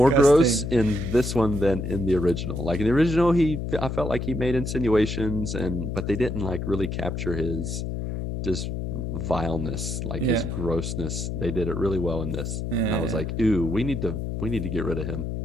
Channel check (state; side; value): noise; left; hum, 4 dB below the sound